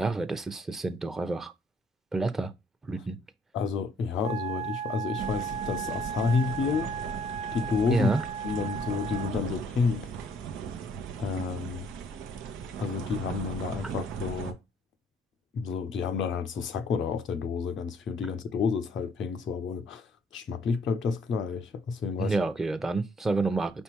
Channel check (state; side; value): normal; both; correlation 0.63